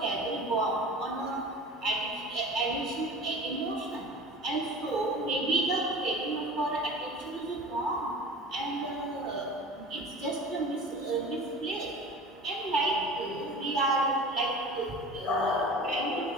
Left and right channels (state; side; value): normal; both; correlation 0.38